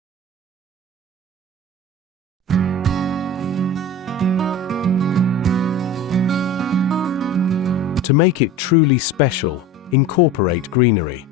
To make it truly special, incorporate greenery.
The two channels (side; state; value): both; normal; correlation 0.34